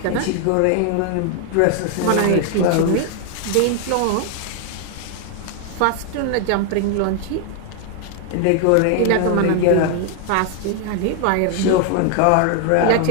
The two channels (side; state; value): both; different; correlation 0.00